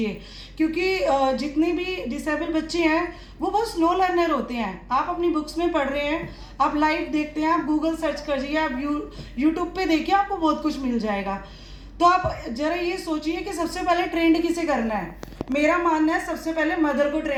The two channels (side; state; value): both; identical; correlation 1.00